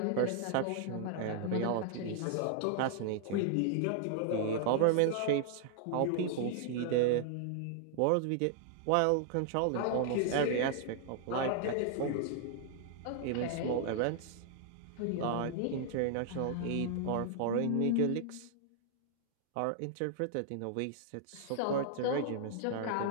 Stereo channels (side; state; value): both; different; correlation 0.00